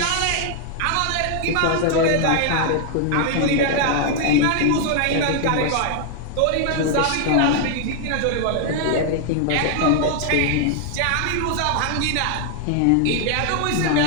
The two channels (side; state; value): both; different; correlation 0.00